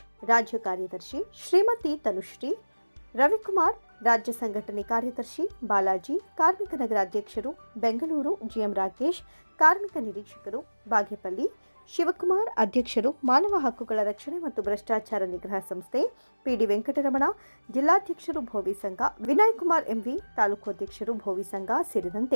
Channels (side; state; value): both; inverted; correlation -1.00